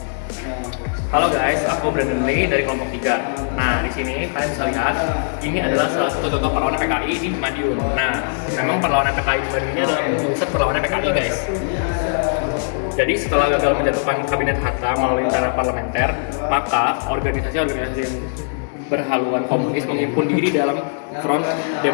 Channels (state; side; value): silent; right; digital silence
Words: Halo guys, aku Brandon Lee dari kelompok 3. Nah, di sini kalian bisa lihat ini adalah salah satu contoh perlawanan PKI di Madiun. Nah, memang perlawanan PKI di Madiun ini adalah pusat perlawanan PKI guys. Jadi setelah gagal menjatuhkan kabinet Hatta melalui cara parlementer, maka organisasi-organisasi yang berhaluan komunis menghimpun diri dalam Front